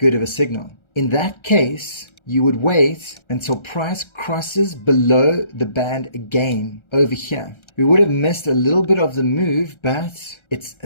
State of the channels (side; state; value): right; late; 1.3 ms